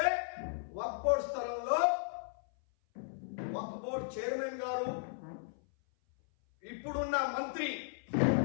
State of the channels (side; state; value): right; silent; 54 dB below the other